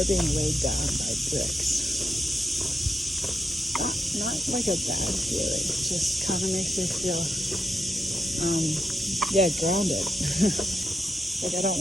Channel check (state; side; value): normal; both; correlation 0.84